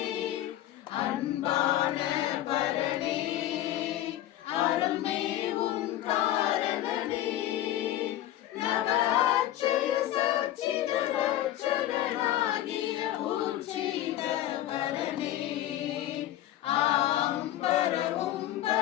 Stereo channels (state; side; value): quieter; right; 13.4 dB